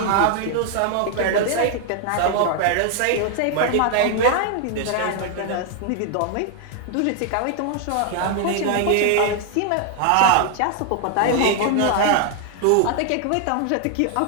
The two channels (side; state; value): both; different; correlation 0.00